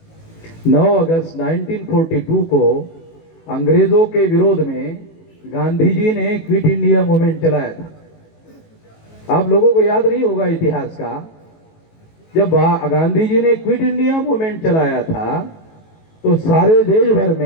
9 अगस्त 1942 को अंग्रेजों के विरोध में गांधी जी ने क्विट इंडिया मूवमेंट चलाया था। आप लोगों को याद नहीं होगा इतिहास का, जब गांधी जी ने क्विट इंडिया मूवमेंट चलाया था तो सारे देश भर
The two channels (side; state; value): right; late; 18 ms